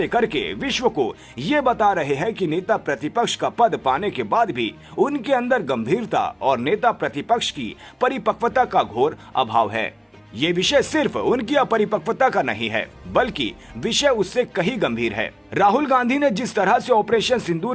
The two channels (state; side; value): identical; both; correlation 1.00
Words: करके विश्व को ये बता रहे हैं कि नेता प्रतिपक्ष का पद पाने के बाद भी उनके अंदर गंभीरता और नेता प्रतिपक्ष की परिपक्वता का घोर अभाव है। ये विषय सिर्फ उनकी अपरिपक्वता का नहीं है, बल्कि विषय उससे कहीं गंभीर है। राहुल गांधी ने जिस तरह से ऑपरेशन